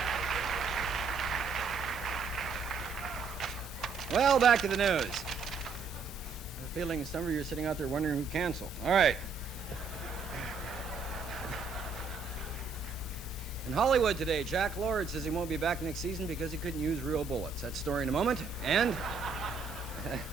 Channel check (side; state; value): left; quieter; 4.9 dB